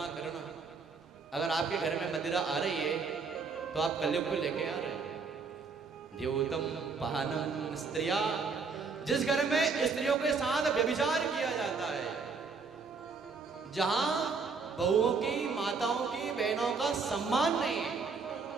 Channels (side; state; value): left; quieter; 4.8 dB